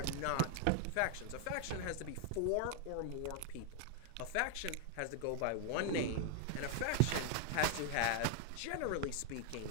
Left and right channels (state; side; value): different; both; correlation 0.00